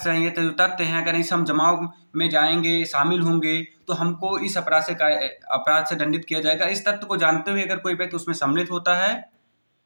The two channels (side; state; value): both; inverted; correlation -1.00